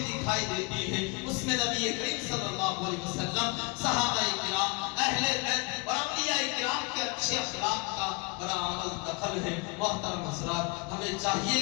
دکھائی دیتی ہے، اس میں نبی کریم صلی اللہ علیہ وسلم، صحابہ کرام، اہل بیت اور اولیاء کرام کے اچھے اخلاق کا بڑا عمل دخل ہے۔ محترم حضرات، ہمیں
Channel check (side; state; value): right; quieter; 29.6 dB